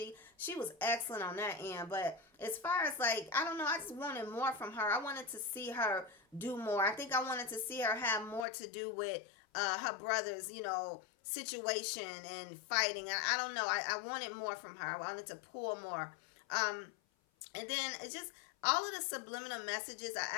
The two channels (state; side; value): drops out; right; at 8.5 s